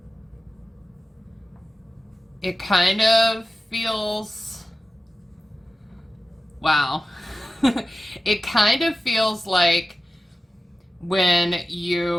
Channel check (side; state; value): both; normal; correlation 0.94